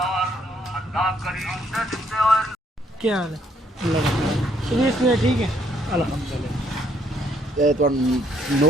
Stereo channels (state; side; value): normal; both; correlation 0.69